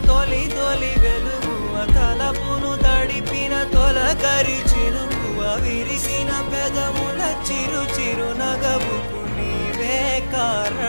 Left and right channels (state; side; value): inverted; both; correlation -1.00